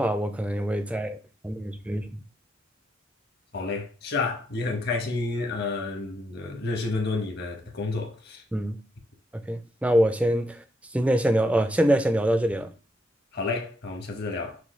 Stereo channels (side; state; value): both; normal; correlation 0.78